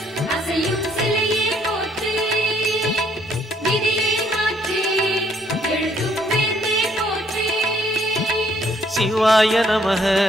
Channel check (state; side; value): normal; both; correlation 0.67